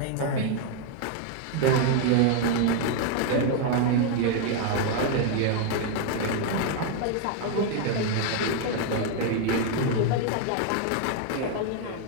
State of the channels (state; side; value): different; both; correlation 0.01